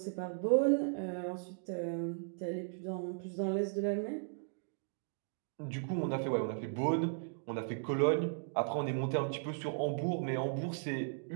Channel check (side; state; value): left; silent; digital silence